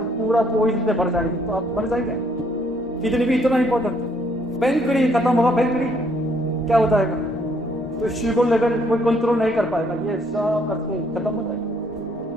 पूरा पॉइजन से भर जाएगी, तो आप मर जाएंगे। किडनी भी इतना इंपॉर्टेंट है। पेनकड़ी खत्म होगा, पेनकड़ी क्या हो जाएगा? तो शुगर लेवल कोई कंट्रोल नहीं कर पाएगा, ये सब करके खत्म हो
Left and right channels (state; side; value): normal; both; correlation 0.67